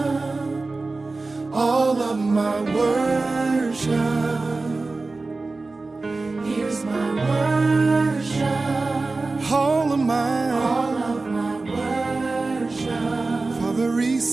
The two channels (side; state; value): left; quieter; 3.5 dB